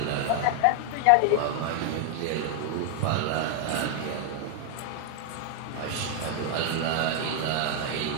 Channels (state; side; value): different; both; correlation 0.00